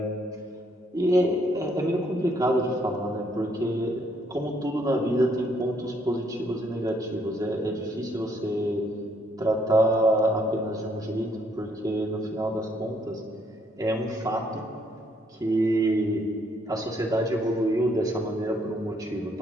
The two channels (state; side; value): normal; both; correlation 0.69